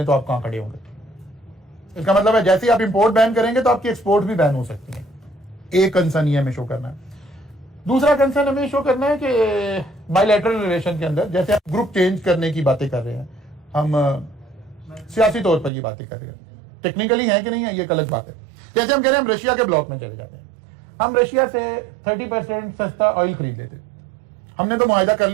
तो आप कहां खड़े होंगे? इसका मतलब है जैसे ही आप इंपोर्ट बैन करेंगे तो आपकी एक्सपोर्ट भी बैन हो सकती है। एक कंसर्न ये हमें शो करना है। दूसरा कंसर्न हमें शो करना है कि बायलैटरल रिलेशन के अंदर जैसे आप ग्रुप चेंज करने की बातें कर रहे हैं, हम सियासी तौर पर ये बातें कर रहे हैं, टेक्निकली है कि नहीं है ये एक अलग बात है। जैसे हम कह रहे हैं हम रशिया के ब्लॉक में चले जाते हैं, हम रशिया से 30% सस्ता ऑयल खरीद लेते, हमने तो मुआहदा कर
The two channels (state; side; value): drops out; left; at 15.7 s